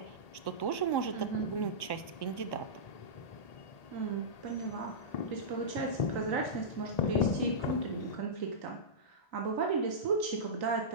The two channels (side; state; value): right; late; 1.1 ms